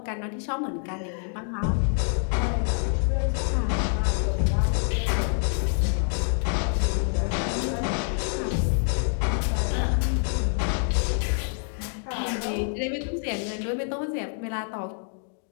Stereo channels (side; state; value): right; silent; 61 dB below the other